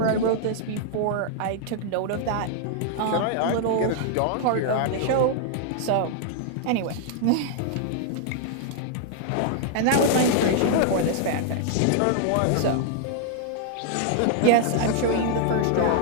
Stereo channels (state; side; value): different; both; correlation -0.01